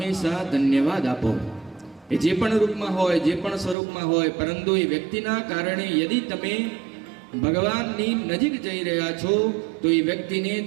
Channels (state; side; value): drops out; left; at 3.8 s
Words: ધન્યવાદ આપો. એ જે પણ રૂપમાં હોય, જે પણ સ્વરૂપમાં હોય, પરંતુ એ વ્યક્તિના કારણે યદિ તમે ભગવાનની નજીક જઈ રહ્યા છો તો એ વ્યક્તિને